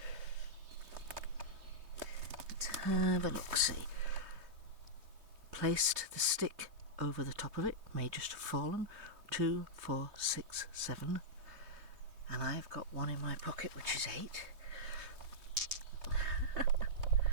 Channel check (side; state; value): left; late; 3.2 ms